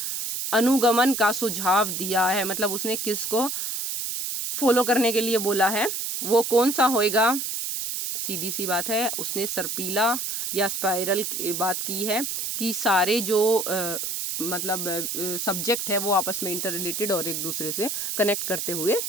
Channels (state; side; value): noise; right; hiss, 3 dB below the sound